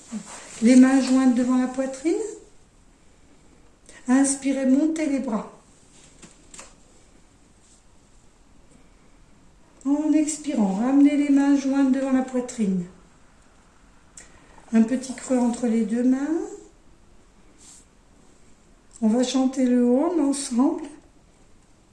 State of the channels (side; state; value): both; identical; correlation 1.00